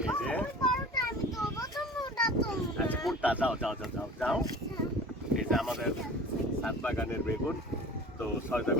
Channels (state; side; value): normal; both; correlation 0.40